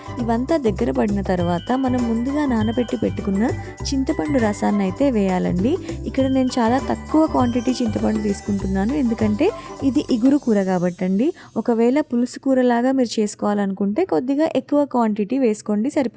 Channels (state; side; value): identical; both; correlation 1.00